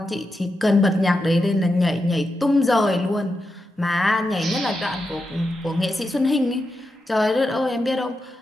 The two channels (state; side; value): normal; both; correlation 0.88